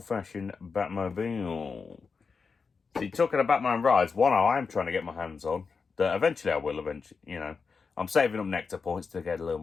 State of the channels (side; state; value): right; quieter; 5.1 dB